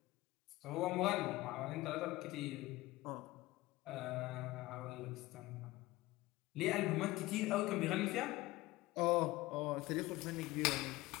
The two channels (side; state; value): right; quieter; 18.8 dB